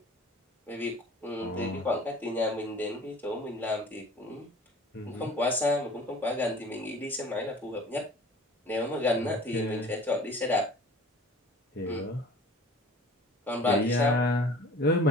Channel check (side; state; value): both; normal; correlation 0.46